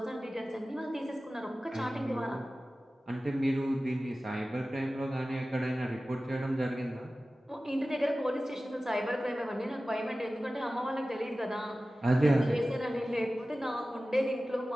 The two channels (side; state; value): both; normal; correlation 0.96